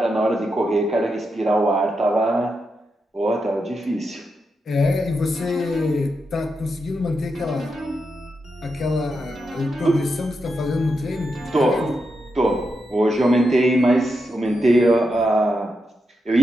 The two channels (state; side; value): normal; both; correlation 0.85